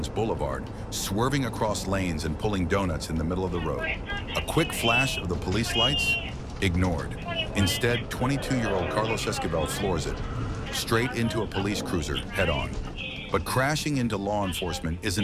Boulevard, swerving across lanes and pulling donuts in the middle of the road. A quick flash of the police lights? Ignored. Instead, 22-year-old Carlos Esquivel floors it, straight into a police cruiser, head-on. But crashing into law enforcement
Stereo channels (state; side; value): identical; both; correlation 1.00